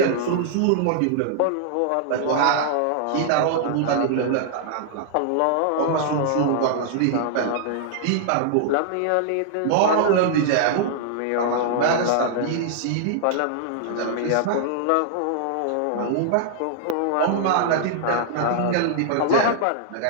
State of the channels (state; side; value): different; both; correlation -0.01